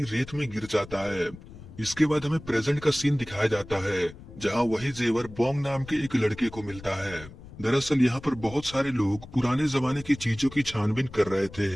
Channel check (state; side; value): noise; left; rumble, 17 dB below the sound